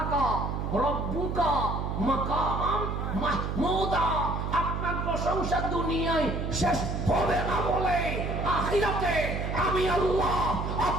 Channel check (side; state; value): right; noise; hum, 2 dB below the sound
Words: রাব্বুকা মাকামান মাহমুদা, আপনার প্রশংসা দুনিয়ায় শেষ হবে না বলে আখিরাতে আমি আল্লাহ